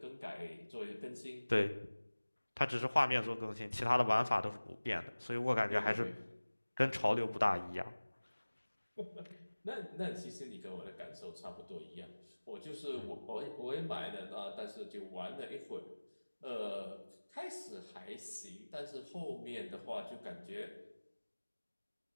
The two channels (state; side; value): inverted; both; correlation -1.00